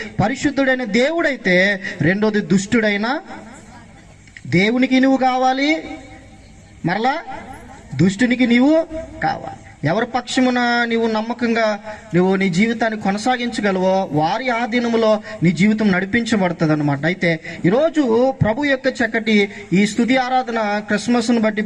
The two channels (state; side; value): identical; both; correlation 1.00